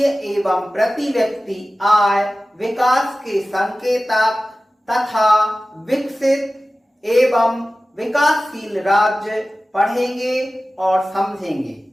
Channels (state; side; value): normal; both; correlation 0.96